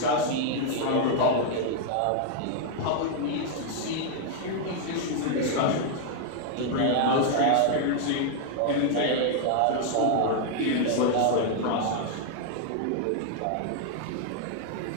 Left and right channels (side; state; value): both; different; correlation 0.00